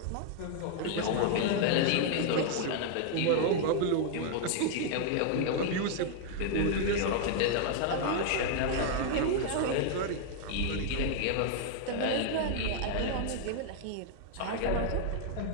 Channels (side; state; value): both; different; correlation 0.00